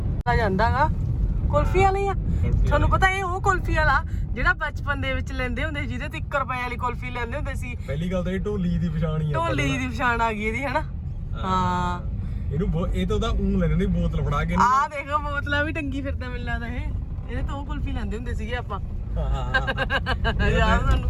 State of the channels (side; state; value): both; identical; correlation 1.00